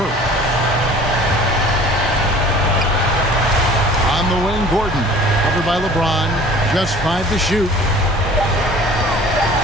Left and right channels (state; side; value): normal; both; correlation 0.47